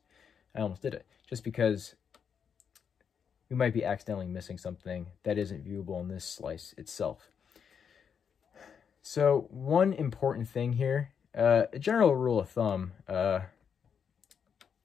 I almost did it, just because we might be accidentally missing something that isn't viewable in this slice itself. So one important thing here, a general rule of thumb,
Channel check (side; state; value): right; quieter; 7.1 dB